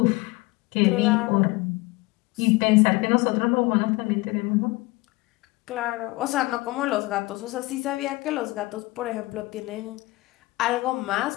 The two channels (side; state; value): right; quieter; 21.7 dB